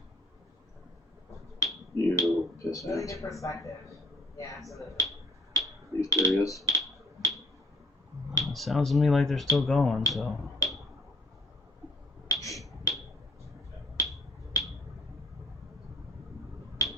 You piss Really ass. good perspective. Yeah, absolutely. These curious. It sounds to me like they're still going, so.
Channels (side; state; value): both; normal; correlation 0.51